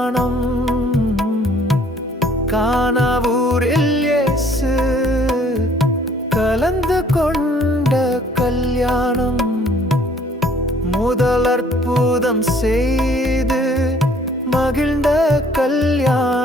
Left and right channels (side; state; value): both; normal; correlation 0.58